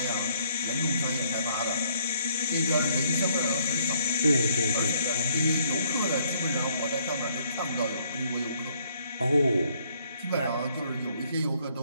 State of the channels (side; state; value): both; inverted; correlation -0.67